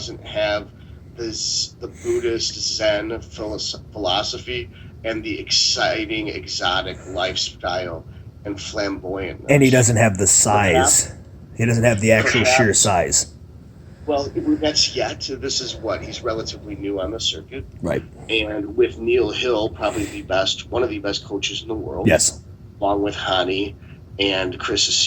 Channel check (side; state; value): both; identical; correlation 1.00